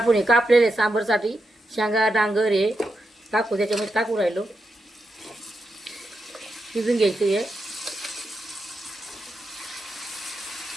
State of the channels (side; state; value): both; normal; correlation 0.86